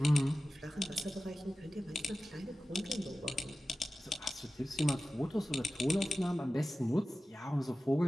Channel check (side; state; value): both; normal; correlation 0.95